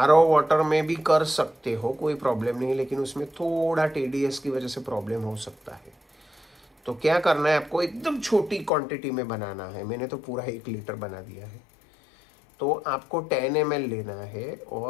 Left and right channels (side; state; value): right; drops out; at 8.7 s